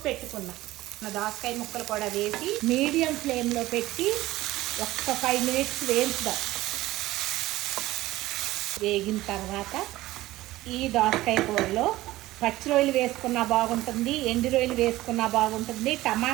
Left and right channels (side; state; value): left; quieter; 17.0 dB